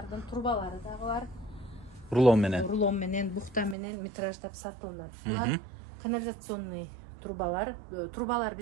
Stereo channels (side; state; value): left; drops out; at 3.8 s